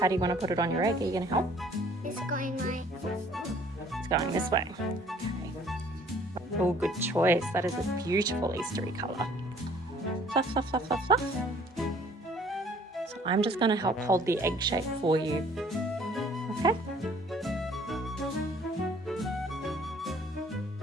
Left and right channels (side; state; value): both; normal; correlation 0.57